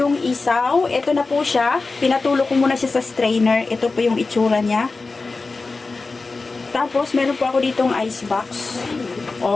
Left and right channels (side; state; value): right; quieter; 3.8 dB